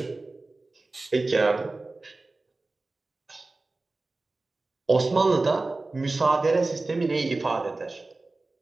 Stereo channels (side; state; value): left; quieter; 3.3 dB